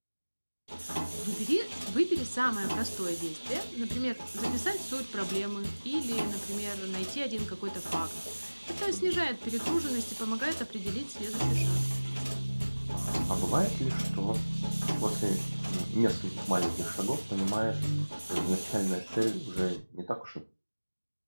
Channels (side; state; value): both; inverted; correlation -1.00